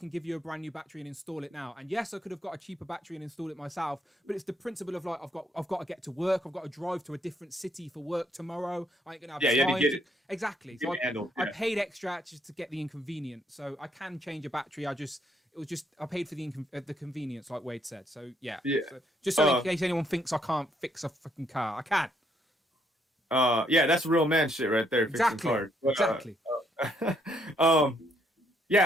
give you a brand new battery and install it now. And yes, I could have got a cheaper battery and installed it myself, but it's the principle of like, I've got to get to work. I've got to drive to a different city for work tomorrow. I ain't going to have time. Exactly. So I paid extra just to get the inconvenience. So I can change a battery. I paid for the convenience, like Wade said. So yeah. So, just so in case anyone thinks I can't fix a fucking car, I can. Yeah, that's real man shit right there. Exactly. Exactly.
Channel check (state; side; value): normal; both; correlation 0.71